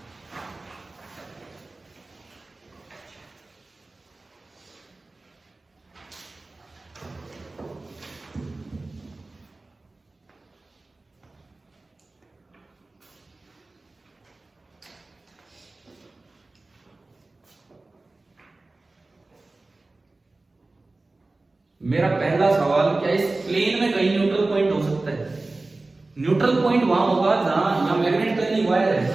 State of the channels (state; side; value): quieter; left; 3.2 dB